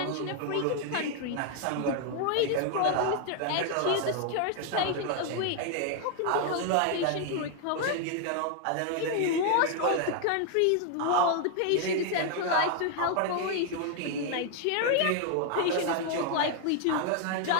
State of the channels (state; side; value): different; both; correlation 0.00